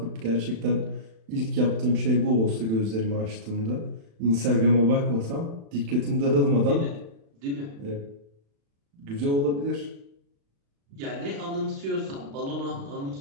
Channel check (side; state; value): left; late; 36 ms